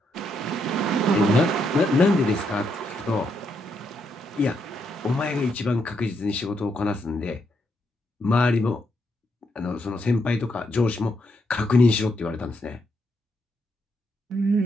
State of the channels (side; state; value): both; normal; correlation 0.78